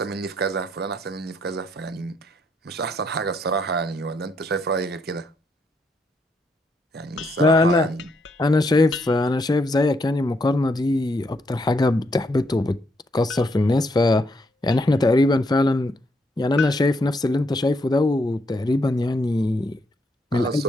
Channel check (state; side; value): normal; both; correlation 0.75